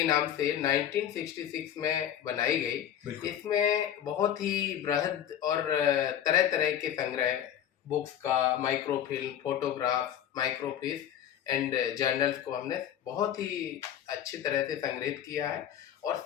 नाम से 1966 में बनाई गई। इसमें बहुत ही बृहद और तरह तरह के संग्रह, बुक्स का, microfilm, photograph, microfilm and journals को हमने बहुत ही अच्छी तरह से संग्रहित किया है और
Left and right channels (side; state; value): right; quieter; 10.2 dB